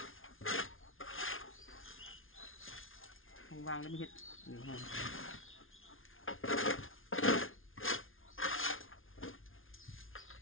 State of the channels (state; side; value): late; right; 0.59 ms